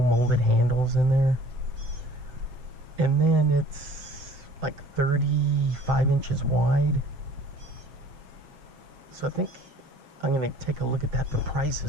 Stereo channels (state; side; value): late; left; 6.8 ms